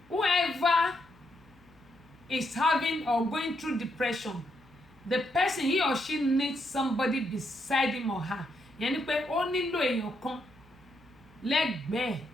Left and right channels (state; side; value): noise; left; hum, 29 dB below the sound